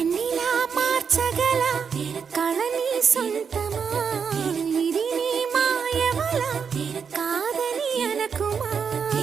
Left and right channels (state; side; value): quieter; left; 6.5 dB